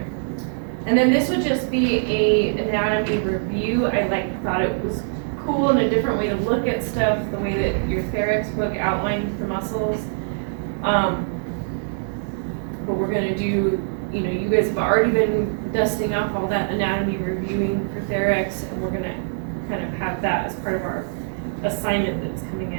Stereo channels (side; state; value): left; silent; digital silence